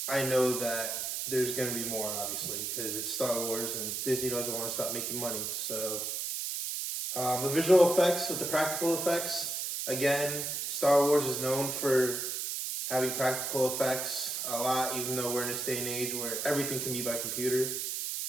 I know that there's going to be more, obviously, because it's Star Wars and Disney doesn't want to stop making money. So the visual effects with the practical effects, again, Star Wars is known for having practical effects a lot, even though we're in this day and age where everything can be by computer.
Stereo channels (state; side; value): noise; right; hiss, 2 dB below the sound